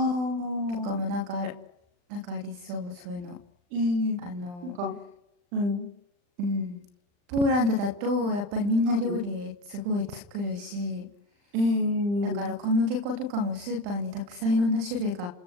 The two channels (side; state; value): left; late; 40 ms